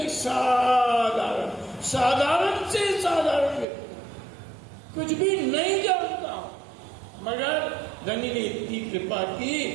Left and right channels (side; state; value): left; drops out; at 3.7 s